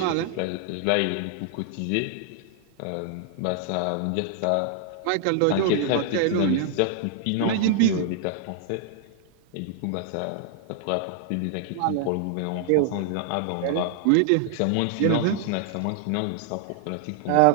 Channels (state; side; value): different; both; correlation -0.01